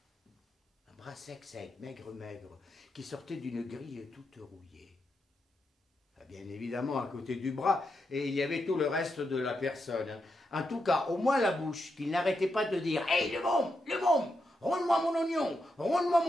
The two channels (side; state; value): both; normal; correlation 0.85